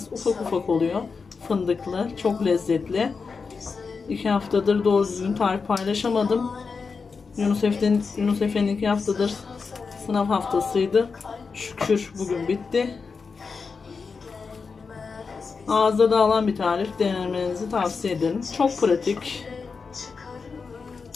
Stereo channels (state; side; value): quieter; right; 5.0 dB